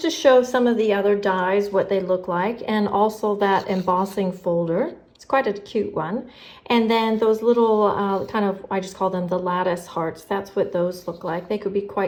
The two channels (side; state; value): both; identical; correlation 1.00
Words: to show some of the other dies, what they look like, and also that embossing folder. It's quite a cute one. And then those little kind of, I just call them the lattice hearts. That's what those look like. They could be